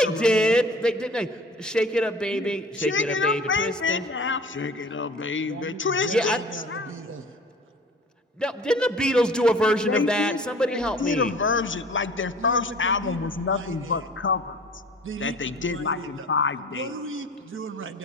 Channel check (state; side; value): normal; both; correlation 0.45